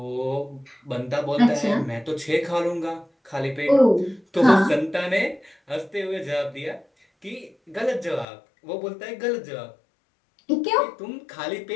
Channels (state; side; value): drops out; right; at 8.2 s